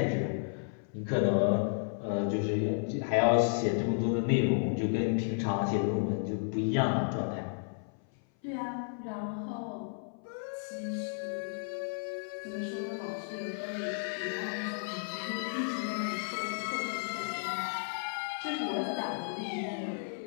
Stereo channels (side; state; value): right; silent; 56 dB below the other